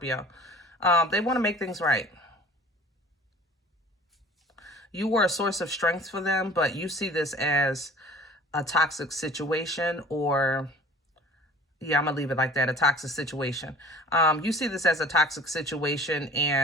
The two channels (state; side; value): normal; both; correlation 0.46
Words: They want to make things right. You were a source of strength for them, but you see this as a toxic situation, or, yeah, I'm going to leave it like that, a toxic situation. You see this as a toxic situation,